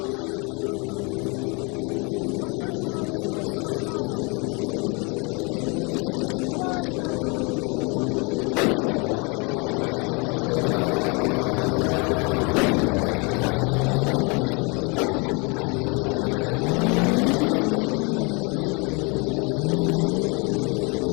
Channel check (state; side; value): quieter; right; 31.2 dB